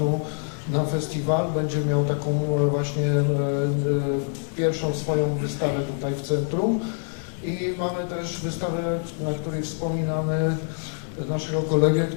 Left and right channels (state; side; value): silent; right; 57 dB below the other